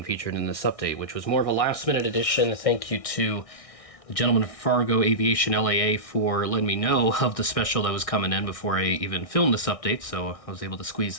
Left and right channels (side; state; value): right; late; 1.6 ms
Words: featured in this update, which was more of a last-minute addition. Thank you to the gentleman from Fargo Aviation LAA for letting me know of the special that was coming in before I even filmed this update, so I was able to squeeze